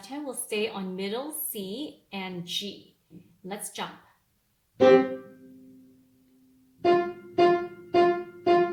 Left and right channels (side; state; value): both; identical; correlation 1.00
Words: hand will stay on middle C and G. Let's jump.